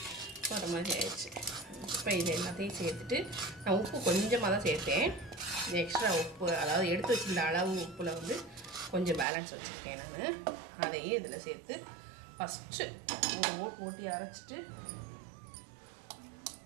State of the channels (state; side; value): drops out; left; at 9.2 s